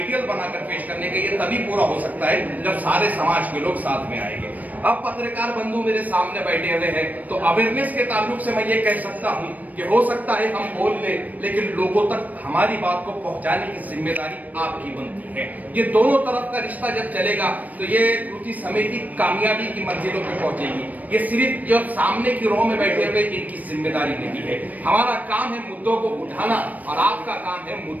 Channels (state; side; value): late; left; 0.076 ms